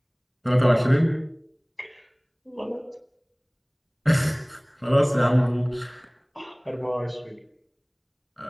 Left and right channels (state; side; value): identical; both; correlation 1.00